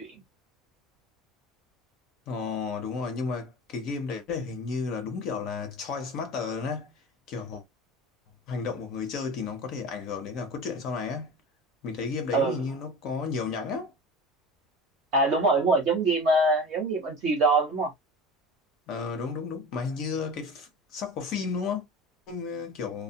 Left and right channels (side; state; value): both; normal; correlation 0.33